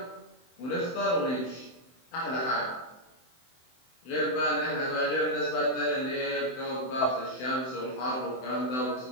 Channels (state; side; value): late; right; 23 ms